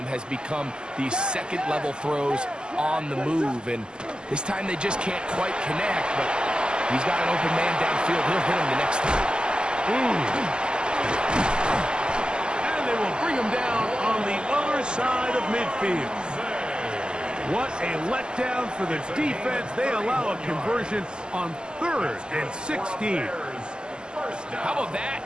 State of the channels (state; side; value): late; left; 0.047 ms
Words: has become these second-level throws on the move, and this time they just can't quite connect, but he's got an open man downfield. He'll hit him the next time. And they will bring him down on the other side of midfield. What a letdown for the defense. They allow a conversion on 3rd and 16. How about